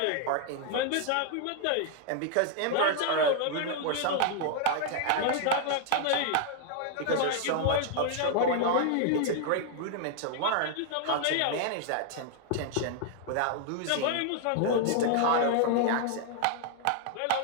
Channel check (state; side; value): different; both; correlation 0.00